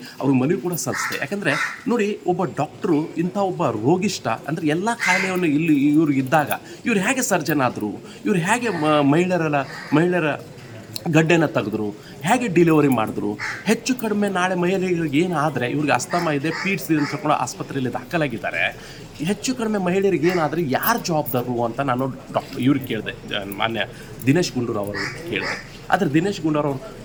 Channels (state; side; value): identical; both; correlation 1.00